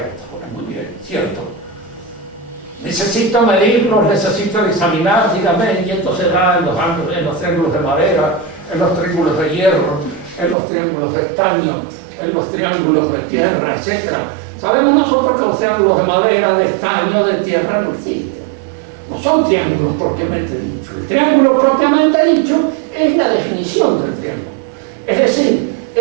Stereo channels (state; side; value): drops out; left; at 10.6 s